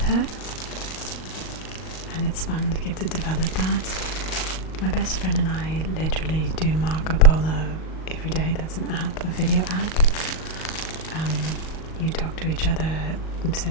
her, and it's fun to get to develop that. My best friend and I literally do Marco Polo every day. That's an app, a video app. You talk to each other,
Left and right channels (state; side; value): late; right; 38 ms